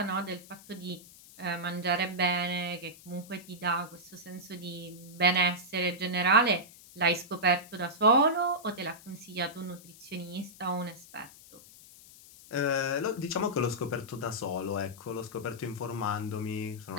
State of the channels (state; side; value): noise; left; hiss, 20 dB below the sound